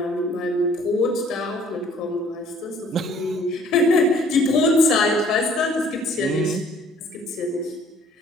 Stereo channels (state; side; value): normal; both; correlation 0.56